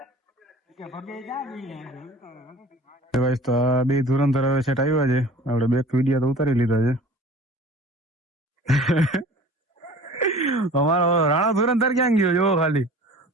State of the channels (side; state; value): both; normal; correlation 0.44